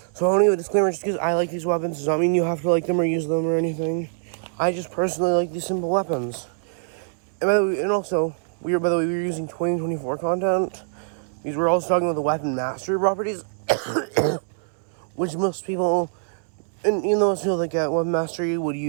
So I want to give a disclaimer just because I like these weapons. Does not mean you have to like them or use them or anything. I just personally like these simple weapons. And by the way, we were using 2024 content because we're also talking about the weapon mastery properties, which most people, and even though it feels like weapon mastery would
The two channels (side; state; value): left; silent; 63 dB below the other